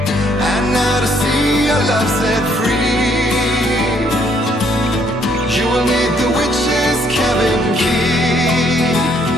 And now to see your love set free, you will need the witch's cabin key.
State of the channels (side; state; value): both; normal; correlation 0.67